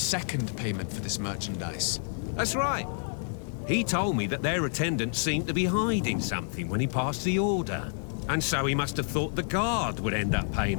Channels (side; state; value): right; silent; 59 dB below the other